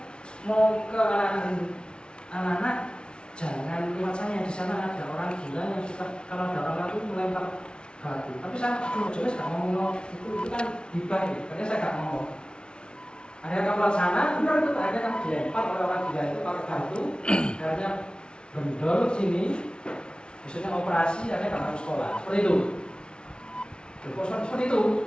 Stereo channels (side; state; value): right; late; 0.056 ms